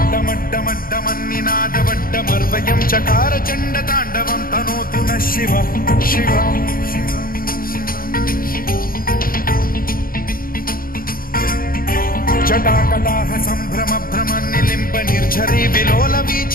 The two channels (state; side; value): late; right; 0.42 ms